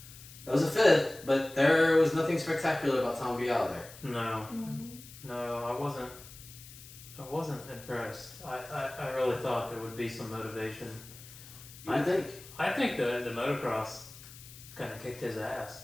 That was a 5th, but there was nothing spectacular about Tom Biao there. No. No, I wasn't impressed. I really thought there would be some motivation. I think. I think the motocross kind of kicked his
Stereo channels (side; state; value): left; noise; hiss, 17 dB below the sound